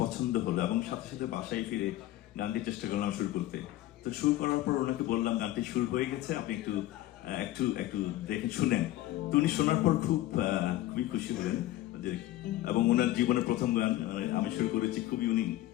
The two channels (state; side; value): quieter; right; 15.4 dB